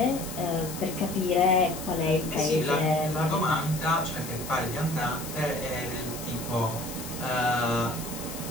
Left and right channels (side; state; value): left; noise; hiss, 11 dB below the sound